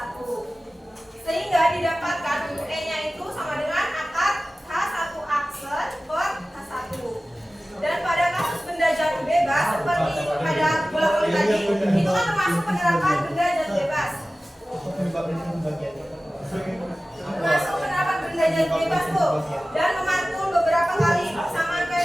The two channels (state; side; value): normal; both; correlation 0.96